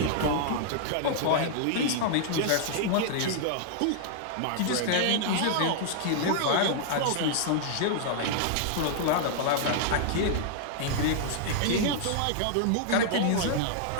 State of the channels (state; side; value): different; both; correlation -0.01